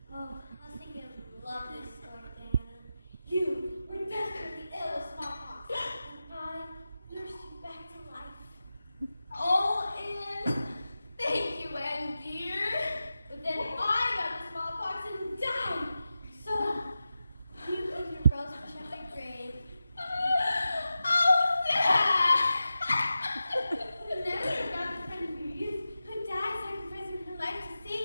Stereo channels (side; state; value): both; inverted; correlation -0.93